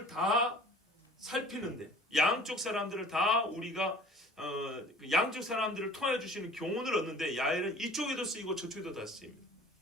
다 살피는데, 양쪽 사람들을 다 우리가 양쪽 사람들을 통하여 주시는 교훈을 얻는데, 야일은 이쪽에도 쓰이고 저쪽에도 다 쓰입니다.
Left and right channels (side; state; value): both; normal; correlation 0.47